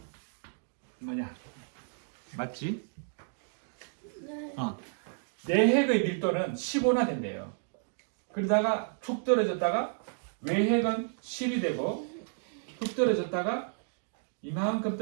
뭐냐 맞지? 내핵의 밀도는 15나 된대요. 그러다가 툭 떨어졌다가 외핵은 10이 되고 툭 떨어졌다가 이만큼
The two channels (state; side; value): silent; left; digital silence